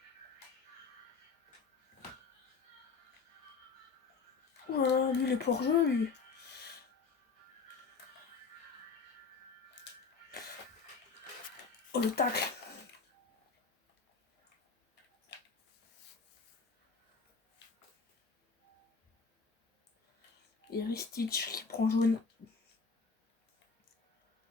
Oh là là, lui, il est pas hors-jeu, lui. Oh, le tacle! Et Ristich qui prend jaune.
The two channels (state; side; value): quieter; right; 5.0 dB